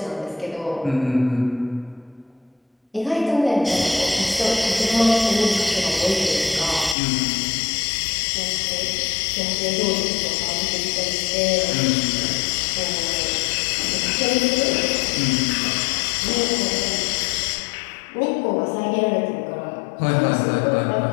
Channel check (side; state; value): right; drops out; at 7.0 s